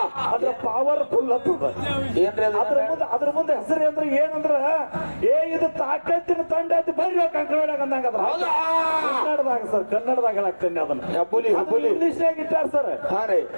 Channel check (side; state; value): both; inverted; correlation -1.00